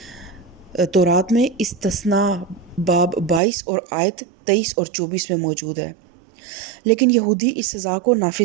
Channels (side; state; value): left; drops out; at 3.4 s